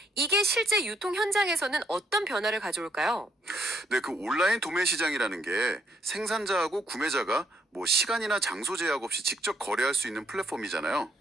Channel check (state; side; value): normal; both; correlation 0.72